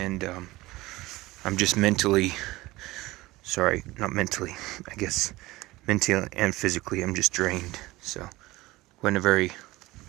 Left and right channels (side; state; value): left; quieter; 19.5 dB